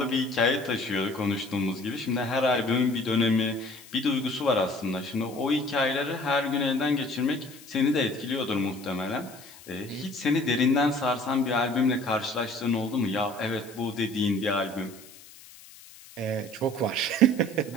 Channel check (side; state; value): left; noise; hiss, 20 dB below the sound